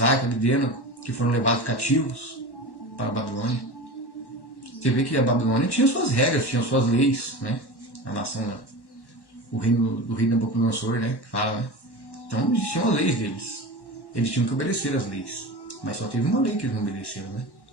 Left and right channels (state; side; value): late; right; 1.1 ms